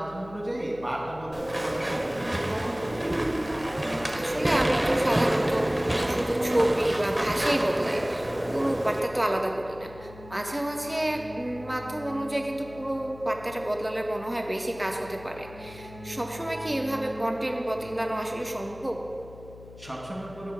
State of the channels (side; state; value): left; noise; hum, 18 dB below the sound